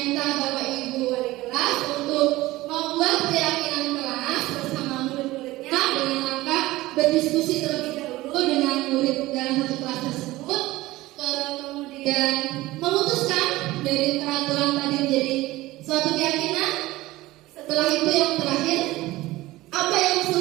Bapak Ibu wali kelas untuk membuat keyakinan kelas bersama murid-muridnya dengan langkah berdiskusi terlebih dahulu dengan murid dalam satu kelas tersebut. Kemudian memutuskan dari peraturan tadi menjadi suatu keyakinan. Setelah itu yang terakhir, apa yang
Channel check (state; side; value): quieter; left; 18.3 dB